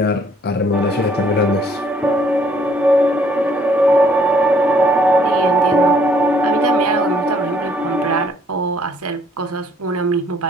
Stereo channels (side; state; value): both; normal; correlation 0.64